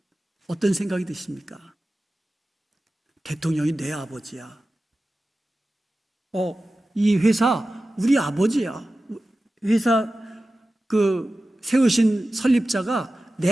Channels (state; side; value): normal; both; correlation 0.95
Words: 어떤 생각이 드십니까? 대통령이 내 아버지야. 이 회사 우리 아버지야. 회사 세우신 설립자가 내